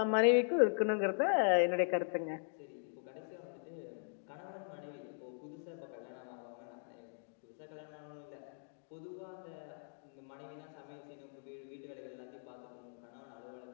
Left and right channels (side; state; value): right; silent; digital silence